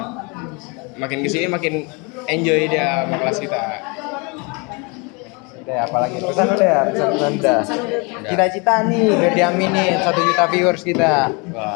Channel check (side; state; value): right; quieter; 30.5 dB